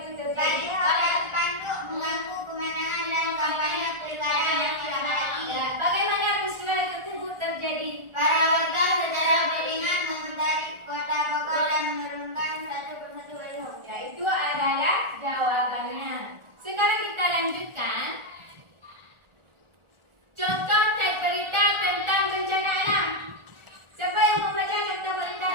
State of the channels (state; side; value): late; left; 1.4 ms